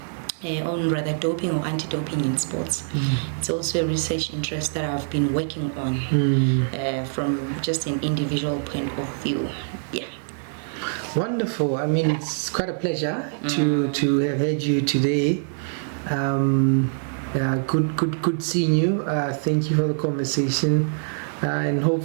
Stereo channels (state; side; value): silent; left; 62 dB below the other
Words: rather doping or anti-doping in sports. It's also a research interest that I've been working on from just an individual point of view. Wonderful. I mean, it's quite a pleasure to have had you today. Good seeing you. Thank you for the conversation, and